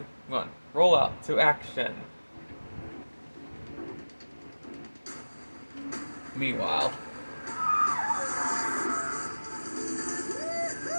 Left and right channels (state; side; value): inverted; both; correlation -1.00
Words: 1. Roll out to action. Meanwhile.